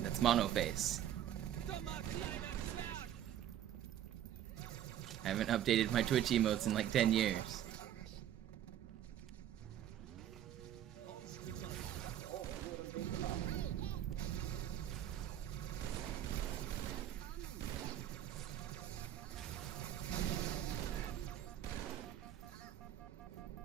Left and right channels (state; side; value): quieter; left; 11.1 dB